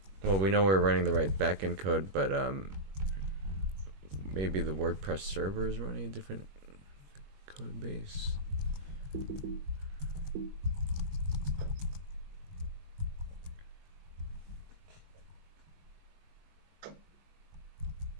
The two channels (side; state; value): left; late; 21 ms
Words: Well, we know we're running the right backend code, but maybe the WordPress server is running a different code base.